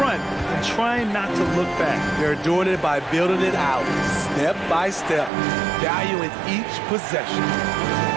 and trying not to look back. They're doing it by building it out, step by step, valuing each possession.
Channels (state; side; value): drops out; left; at 5.3 s